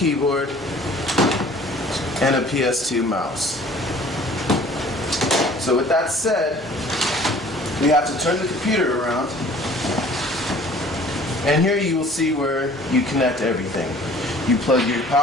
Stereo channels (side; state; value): both; normal; correlation 0.51